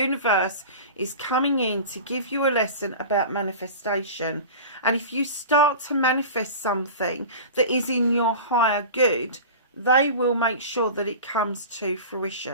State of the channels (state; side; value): inverted; both; correlation -0.34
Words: is coming in to give you a lesson about manifestation. And if you start to manifest something that is in your higher good, they will make sure that it comes to